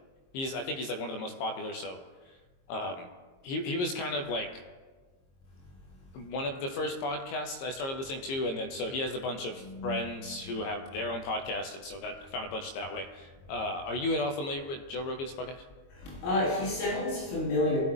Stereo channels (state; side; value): late; right; 22 ms